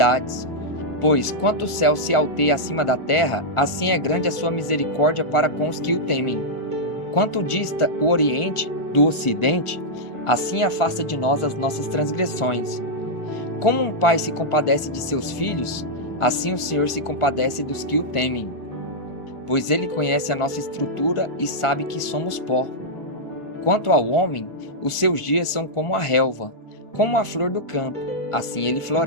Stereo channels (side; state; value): right; late; 1.4 ms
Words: Pois, quanto o céu se alteia acima da terra, assim é grande a sua misericórdia para com os que o temem. Quanto dista o Oriente do Ocidente, assim afasta de nós as nossas transgressões. Como um pai se compadece de seus filhos, assim o Senhor se compadece dos que o temem. Pois ele conhece a nossa estrutura e sabe que somos pó. Quanto ao homem, os seus dias são como a relva, como a flor do campo, assim ele